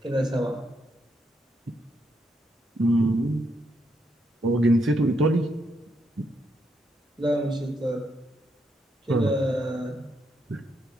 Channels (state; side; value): normal; both; correlation 0.78